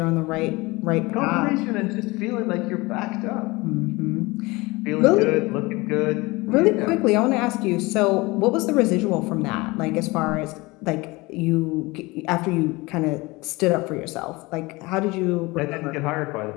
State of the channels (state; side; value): quieter; right; 23.0 dB